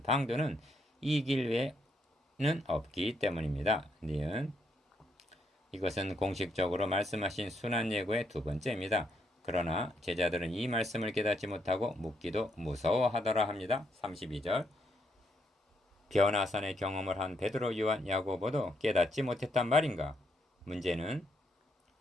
방도는 이 길 외에는 없기 때문입니다. 니은 이것은 공식적으로 말씀하신 순환 예고의 두 번째입니다. 그러나 제자들은 이 말씀을 깨닫지 못하고 묻기도 무서워하더라 합니다. 32절 변화산의 경험을 한 베드로, 요한, 야고보도 깨닫지 못했단 말인가? 문제는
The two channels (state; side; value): normal; both; correlation 0.76